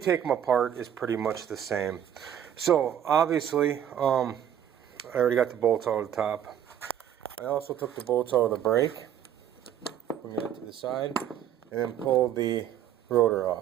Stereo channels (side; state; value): left; quieter; 9.9 dB